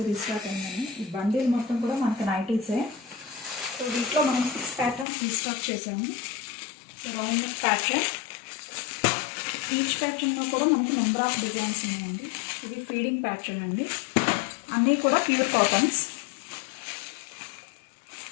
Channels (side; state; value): right; drops out; at 5.1 s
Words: రీస్టాక్ అయిందని. ఈ బండిల్ మొత్తం కూడా మనకి నైటీసే. సో వీటిలో మనం 6 ప్యాటర్న్స్ రీస్టాక్ చేసాము. So round neck pattern, each ప్యాటర్న్లో కూడా మనకి నెంబర్ ఆఫ్ డిజైన్స్ ఉన్నాయండి. ఇది ఫీడింగ్ ప్యాటర్న్ అండి. అన్నీ కూడా ప్యూర్ కాటన్స్.